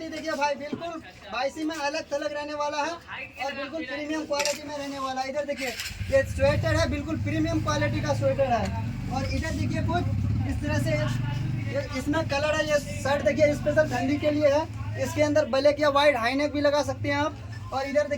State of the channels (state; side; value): identical; both; correlation 1.00